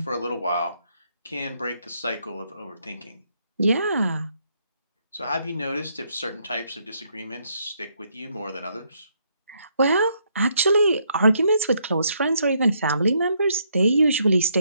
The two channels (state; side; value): inverted; both; correlation -0.73